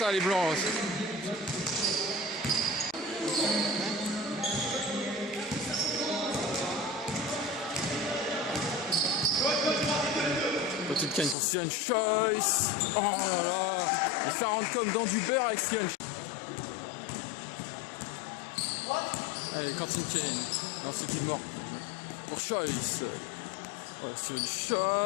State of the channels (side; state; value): right; drops out; at 11.4 s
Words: les Blancs. Quentin Kane pour Steven Choice. Oh là là. Et ça rentre comme dans du beurre avec Steven Choice. Allez, Quentin Kane. Non, c'est Gilmore. Pour Choice. Oh, Steven